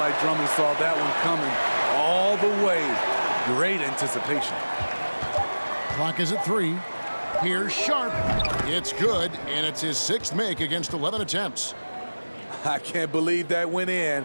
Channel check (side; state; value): both; inverted; correlation -1.00